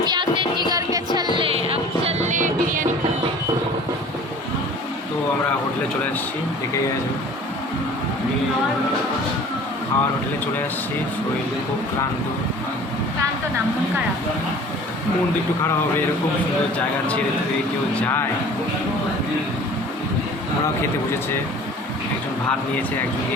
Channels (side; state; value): both; normal; correlation 0.45